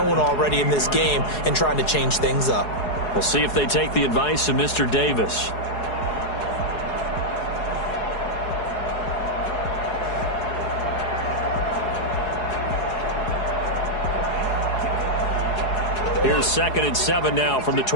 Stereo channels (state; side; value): late; right; 4.8 ms